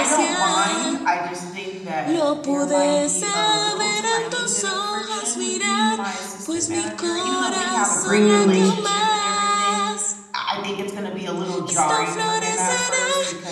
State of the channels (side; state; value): both; identical; correlation 1.00